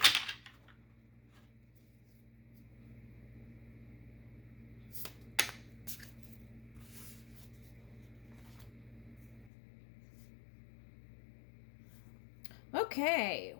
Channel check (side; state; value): right; drops out; at 9.5 s